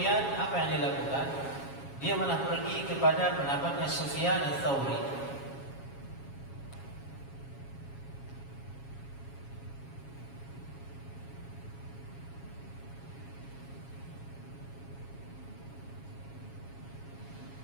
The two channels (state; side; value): late; right; 7.3 ms